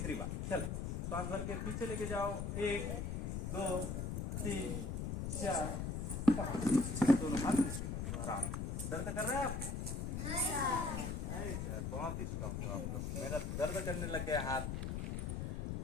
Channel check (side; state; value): left; noise; rumble, 2 dB below the sound